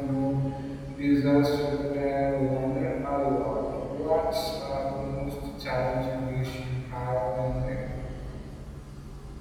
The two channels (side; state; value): both; identical; correlation 1.00